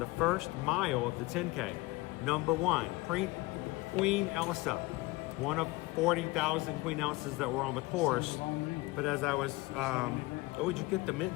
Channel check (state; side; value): quieter; right; 22.1 dB